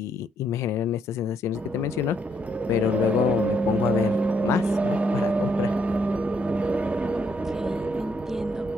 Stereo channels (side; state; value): both; normal; correlation 0.73